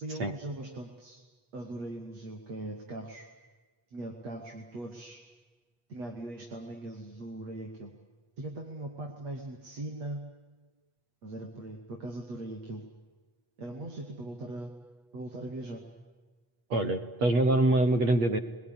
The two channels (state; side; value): late; left; 8.3 ms